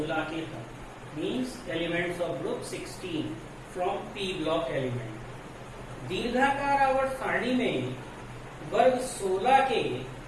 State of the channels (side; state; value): both; identical; correlation 1.00